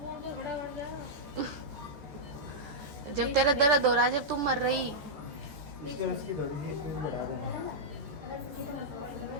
जब तेरा दर्द हो रहा, जब तुम मर रही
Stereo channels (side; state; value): left; late; 14 ms